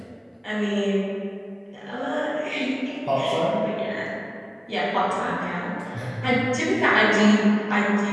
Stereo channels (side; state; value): both; identical; correlation 1.00